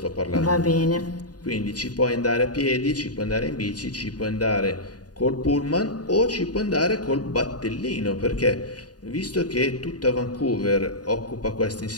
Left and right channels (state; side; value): late; right; 0.68 ms